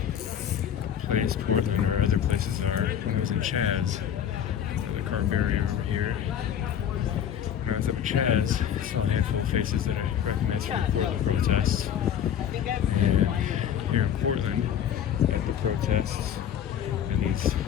place Portland or other places are. When I was in Chaz, the car barrier over here, when I was up at Chaz, I saw a handful of faces that I recognized from the Portland protests. And here in Portland, at the protests, and these,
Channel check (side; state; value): right; quieter; 9.3 dB